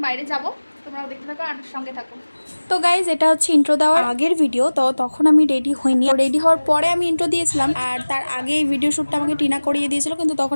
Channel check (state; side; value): inverted; both; correlation -1.00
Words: বাইরে যাবো, তোমরাও দেখতে থাকো আর সঙ্গে থাকো। তো গাইজ এটা হচ্ছে ইন্ট্রো দেওয়ার আগের ভিডিও। তো তখন আমি রেডি হইনি, রেডি হওয়ার পরে আমি ইন্ট্রো দিয়েছিলাম। আর তার আগে এই ভিডিও শ্যুটটা আমাকে টিনা করিয়ে দিয়েছিল, কিন্তু তখন